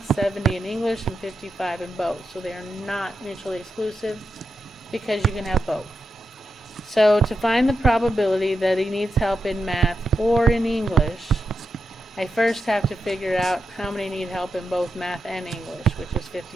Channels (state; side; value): normal; both; correlation 0.87